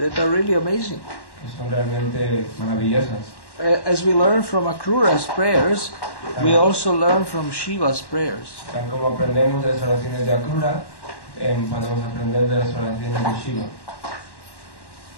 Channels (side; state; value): right; late; 1.1 ms